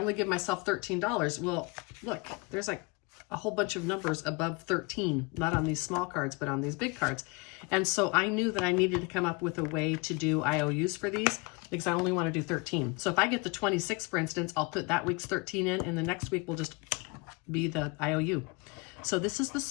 give myself $13. Well, look, there's like a whole bunch of numbers above 13, not on these small cards, but on these big cards. And so I knew that I needed to come up with a way to do IOUs for these because I only want to do 13. So if I get the 26, for instance, I'll put that week's 13 in, and the next week will just be the IOU. So this is the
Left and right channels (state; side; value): quieter; right; 27.9 dB